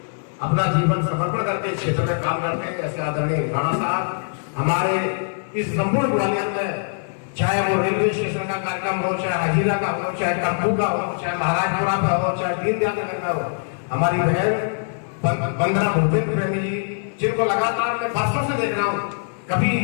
अपना जीवन समर्पण करके इस क्षेत्र में काम करते हैं। ऐसे आदरणीय राणा साहब हमारे इस संपूर्ण ग्वालियर में, चाहे वो रेलवे स्टेशन का कार्यक्रम हो, चाहे हजीरा का हो, चाहे टप्पू का हो, चाहे महाराजपुरा का हो, चाहे दीनदयाल नगर का हो, हमारी बहन वंदना भूपेंद्र प्रेमी जी, जिनको लगातार मैं वर्षों से देख रहा हूँ, कभी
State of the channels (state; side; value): silent; right; 64 dB below the other